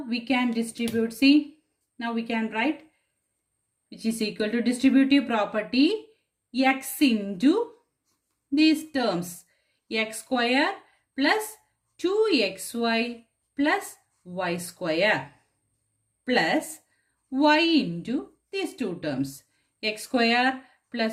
can distribute, see, now we can write, which is equal to distributive property, x into these terms, x square plus 2xy plus y square plus y into these two terms, x square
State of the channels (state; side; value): identical; both; correlation 1.00